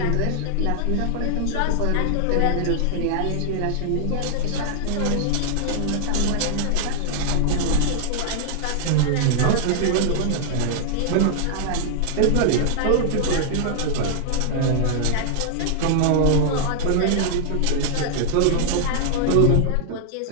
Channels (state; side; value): different; both; correlation -0.01